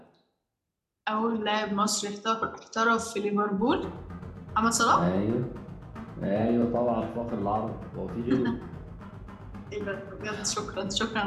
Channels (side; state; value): both; identical; correlation 1.00